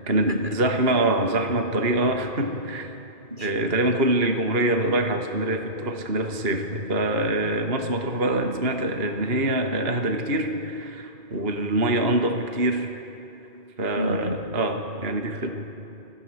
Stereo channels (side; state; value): left; late; 2.8 ms